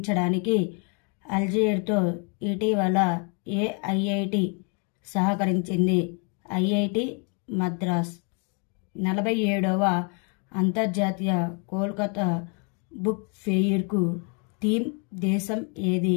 అల్జీర్తో ఇటీవల ఏ ఐఐటి సహకరించింది? ఐఐటి మద్రాస్. 47వ అంతర్జాతీయ కోల్కతా బుక్ ఫెయిర్కు థీమ్ దేశం ఏది?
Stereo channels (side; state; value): right; quieter; 37.0 dB